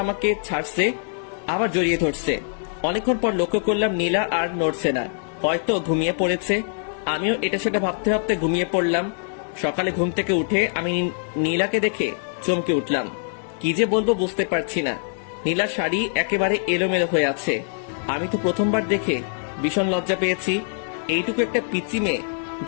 আমাকে ছাড়ছে, আবার জড়িয়ে ধরছে। অনেকক্ষণ পর লক্ষ্য করলাম নীলা আর নড়ছে না, হয়তো ঘুমিয়ে পড়েছে। আমিও এটা সেটা ভাবতে ভাবতে ঘুমিয়ে পড়লাম। সকালে ঘুম থেকে উঠে আমি নীলাকে দেখে চমকে উঠলাম। কি যে বলবো বুঝতে পারছি না। নীলার শাড়ি একেবারে এলোমেলো হয়ে আছে। আমি তো প্রথমবার দেখে ভীষণ লজ্জা পেয়েছি। এইটুকু একটা পিচ্চি মেয়ে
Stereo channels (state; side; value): silent; right; digital silence